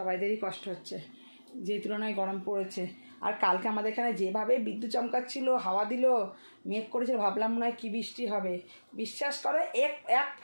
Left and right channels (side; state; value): both; inverted; correlation -1.00